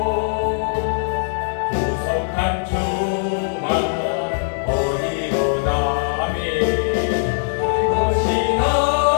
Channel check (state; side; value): silent; right; digital silence